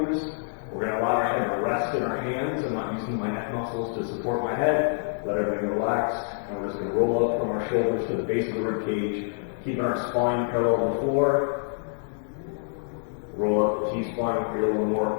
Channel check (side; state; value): right; silent; digital silence